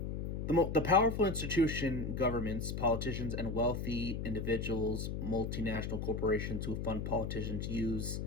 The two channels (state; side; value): noise; left; hum, 3 dB below the sound